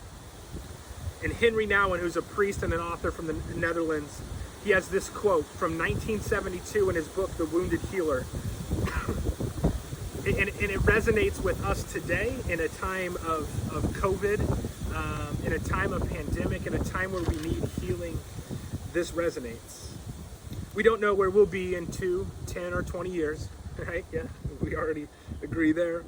And Henry Nouwen, who's a priest and an author from the Netherlands, he has this quote from 1972 in his book, The Wounded Healer. And it resonates with us today in a time of COVID, in a time of pandemic, in a time where we need healing. This resonates. We don't know where we'll be in 2, 10, or 20 years, right? Yeah, we already agree there.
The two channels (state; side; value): identical; both; correlation 1.00